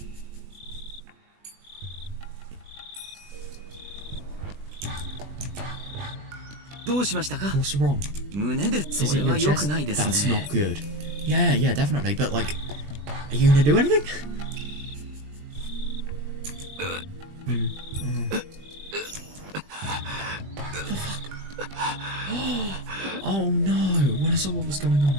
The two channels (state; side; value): late; left; 20 ms